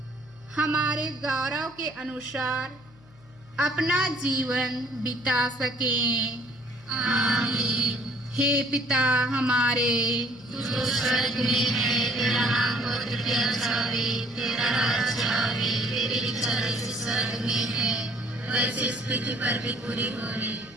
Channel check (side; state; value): left; noise; hum, 26 dB below the sound